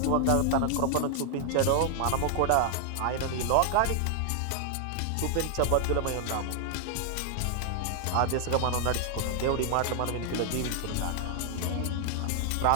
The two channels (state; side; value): different; both; correlation 0.00